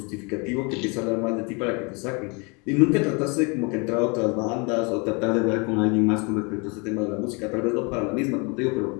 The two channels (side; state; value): right; quieter; 31.3 dB